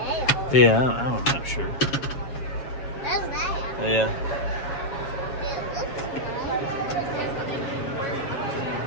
Yeah, I'm not sure. Does that? Yeah. It looks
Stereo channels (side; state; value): right; late; 7.3 ms